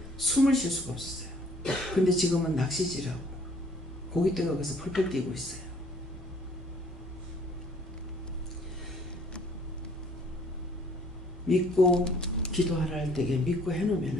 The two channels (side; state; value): both; normal; correlation 0.59